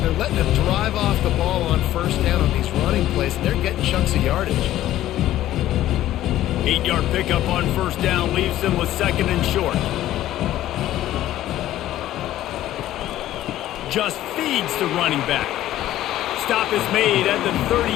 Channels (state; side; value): quieter; right; 13.7 dB